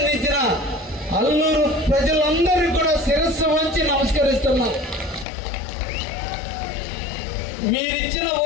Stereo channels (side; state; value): right; drops out; at 5.2 s